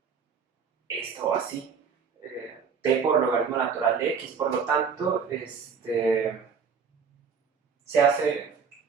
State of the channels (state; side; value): quieter; left; 6.2 dB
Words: esto así, t por logaritmo natural de x, por lo tanto, se hace